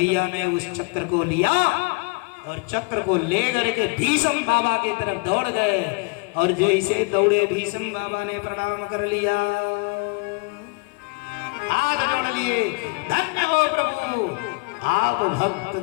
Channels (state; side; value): quieter; right; 30.1 dB